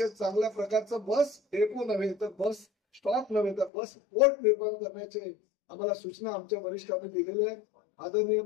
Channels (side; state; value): right; drops out; at 3.7 s